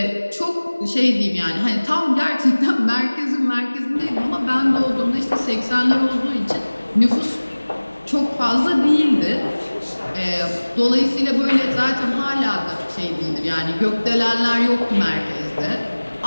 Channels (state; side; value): inverted; both; correlation -1.00